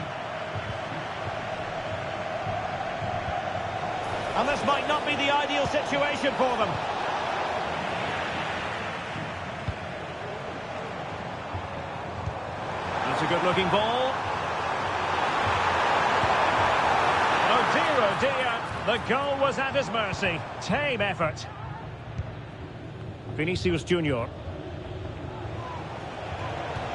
And this might not be the ideal situation for them. That's a good-looking ball. Oh dear, the goal was at his mercy. Tame effort. Vinicius Junior.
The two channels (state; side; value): identical; both; correlation 1.00